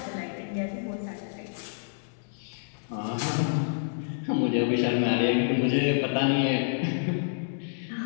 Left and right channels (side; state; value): right; silent; digital silence